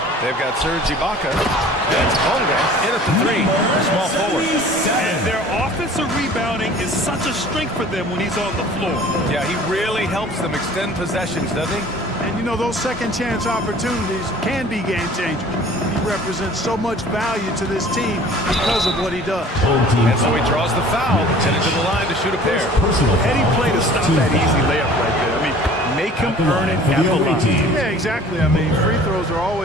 They've got Serge Ibaka. That's Bonga in at the three. Small forward. And their offensive rebounding is such a strength for them when he's on the floor. Yeah, he really helps them extend possessions, doesn't he? And, you know, those second-chance opportunities can be game-changers. He represents so much value to this team because of what he does. And so he draws the foul, headed to the line to shoot a pair. Heady play to stop that easy layup right there. I mean, make him earn it at the line. Yeah, exactly. I mean, free throws are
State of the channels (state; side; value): normal; both; correlation 0.48